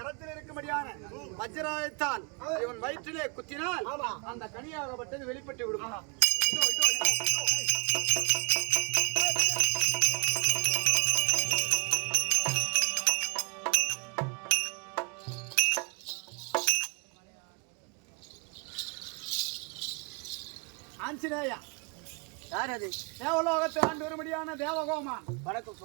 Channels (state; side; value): quieter; left; 33.7 dB